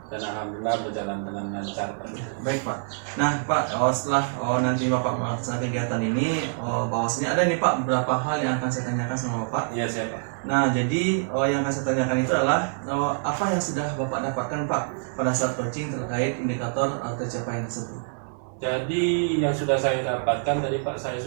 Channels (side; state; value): left; silent; digital silence